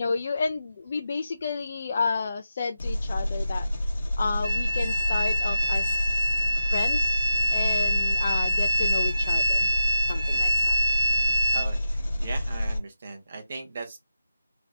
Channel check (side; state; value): both; inverted; correlation -0.90